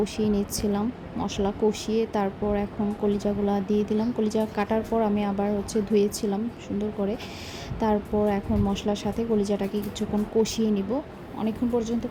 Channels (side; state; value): both; identical; correlation 1.00